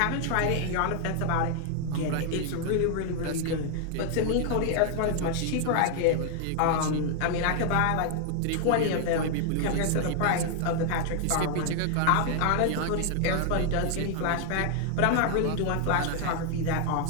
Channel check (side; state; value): both; different; correlation 0.00